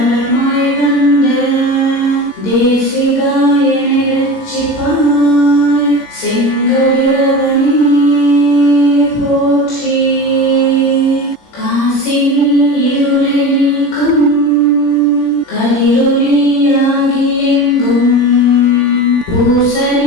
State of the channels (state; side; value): late; right; 17 ms